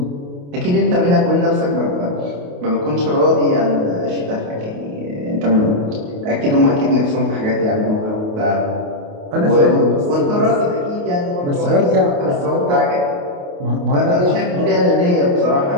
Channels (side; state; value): left; late; 28 ms